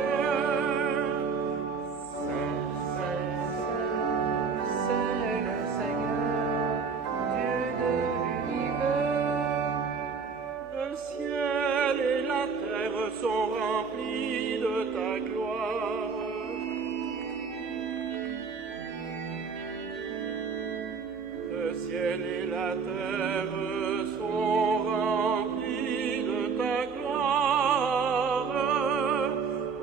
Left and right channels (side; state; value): left; quieter; 5.4 dB